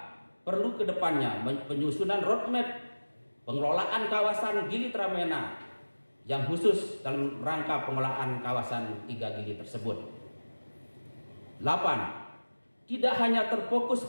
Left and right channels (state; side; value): inverted; both; correlation -1.00